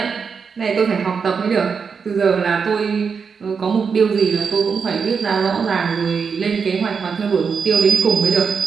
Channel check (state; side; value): quieter; left; 5.8 dB